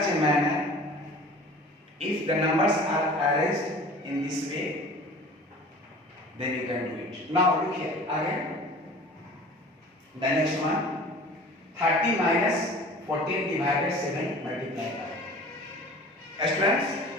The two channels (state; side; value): normal; both; correlation 0.43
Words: a manner. If the numbers are arranged in this way, then you can do it. Now look here again. The next one, 30 minus 14 divided 7 multiplied by. Students,